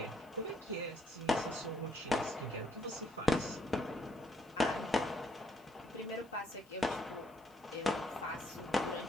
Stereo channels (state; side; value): noise; left; hiss, 29 dB below the sound